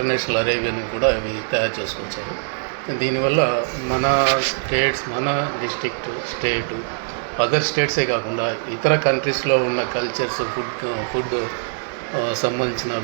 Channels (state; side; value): silent; left; digital silence